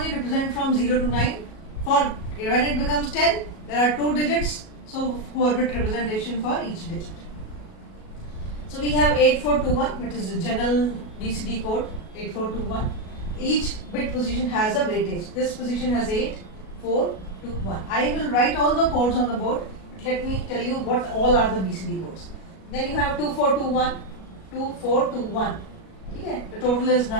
represent from 0 to 9. For when it becomes 10, there are 2 digits, so 4-bit representation for each digit. So we have 8421, which is the general BCD code, 8421. Each bit position has a weightage. This position has 8, 4, 2, 1. I will write all the codes on the board, but let me tell you what all are the BCD codes. Then you have 2421, 2421. Okay, the total is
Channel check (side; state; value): right; late; 37 ms